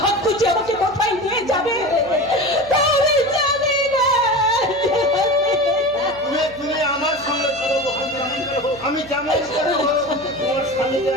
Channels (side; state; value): right; noise; hum, 22 dB below the sound